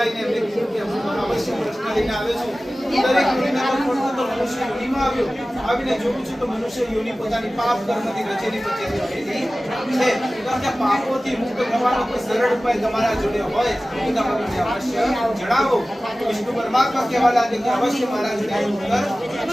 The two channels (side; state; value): both; normal; correlation 0.97